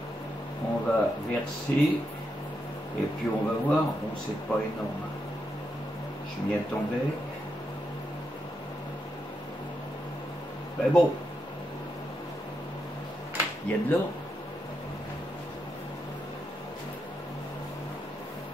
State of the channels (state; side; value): normal; both; correlation 0.83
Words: on va verser et puis on va voir. Bon, c'est pas énorme. Je m'y attendais. Ben bon, il y a de l'or.